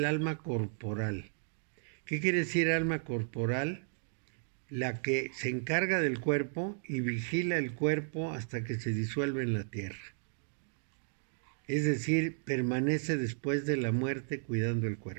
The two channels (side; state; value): left; silent; digital silence